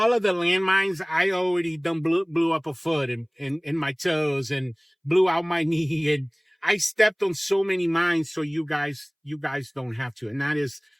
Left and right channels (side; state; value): both; identical; correlation 1.00